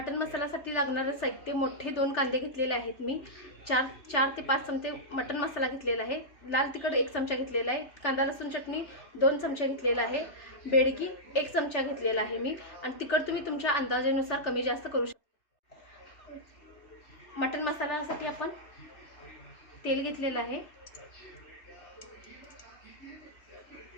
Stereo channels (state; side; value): late; right; 3.4 ms